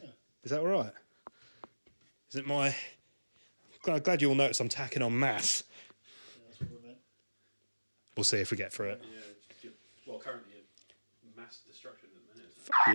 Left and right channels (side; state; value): both; inverted; correlation -1.00